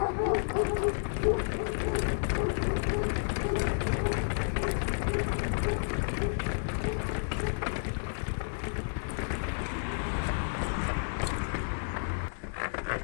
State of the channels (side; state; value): right; silent; digital silence